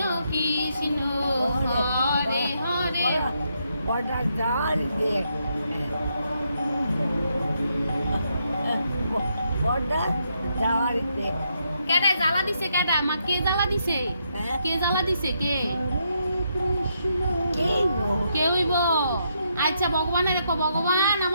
কৃষ্ণ হরে হরে কেডা জ্বালা দিছে কেডা মা কে জ্বালা দিছে কে জ্বালা দিছে কে কে হইব আচ্ছা ভগবানের কো ভগবান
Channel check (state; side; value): inverted; both; correlation -0.78